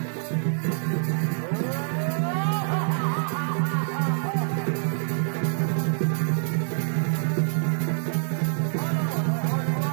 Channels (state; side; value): silent; left; 60 dB below the other